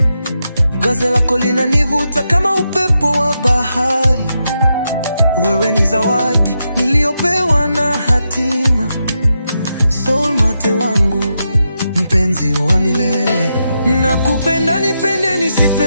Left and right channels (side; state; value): both; inverted; correlation -0.85